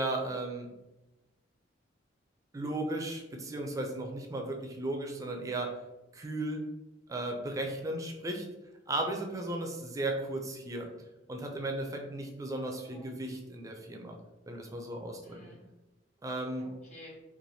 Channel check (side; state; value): both; normal; correlation 0.38